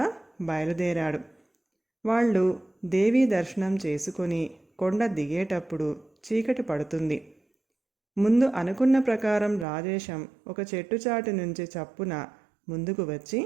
బయలుదేరాడు. వాళ్ళు దేవీ దర్శనం చేసుకొని కొండ దిగేటప్పుడు చీకటి పడుతుంది. ముందు అనుకున్న ప్రకారం రాజేశం ఒక చెట్టుచాటు నుంచి చప్పున ముందుకు వచ్చి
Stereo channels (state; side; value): drops out; left; at 9.7 s